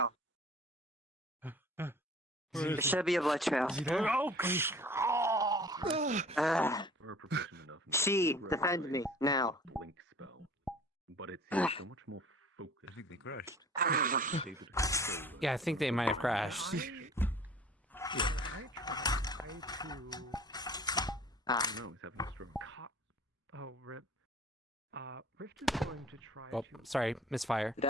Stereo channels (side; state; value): both; normal; correlation 0.47